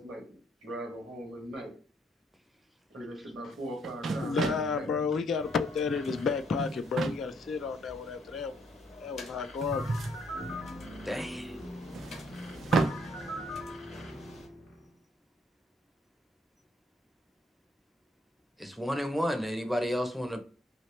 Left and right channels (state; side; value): normal; both; correlation 0.69